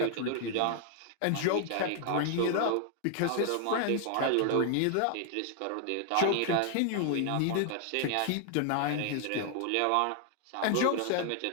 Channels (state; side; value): different; both; correlation 0.00